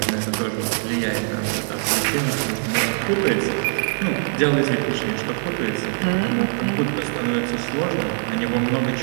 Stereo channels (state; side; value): silent; left; digital silence